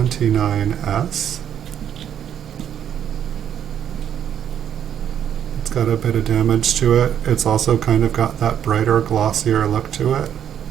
It's got a bit of damage to it. It's also kind of got that brighter, glossier look to it.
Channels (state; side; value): quieter; left; 9.4 dB